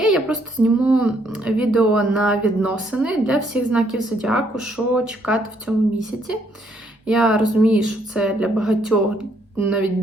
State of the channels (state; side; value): normal; both; correlation 0.70